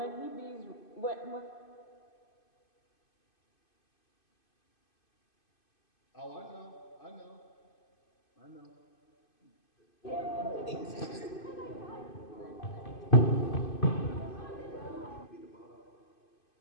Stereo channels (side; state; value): right; late; 2.5 ms